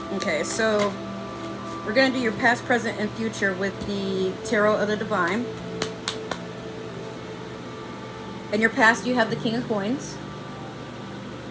Okay, so we're going to do your past, present, and future with the Tarot of the Divine. In your past, you have the King of Coins.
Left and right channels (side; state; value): both; identical; correlation 1.00